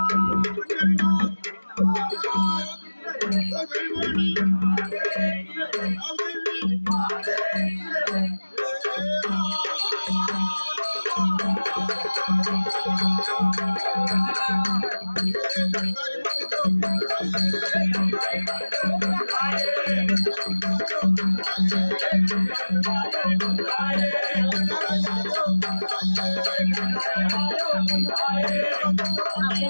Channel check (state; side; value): inverted; both; correlation -1.00